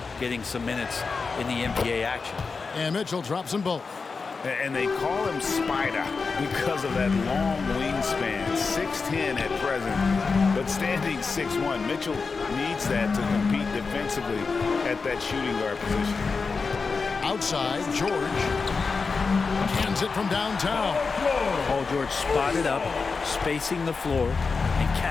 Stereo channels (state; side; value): quieter; right; 4.7 dB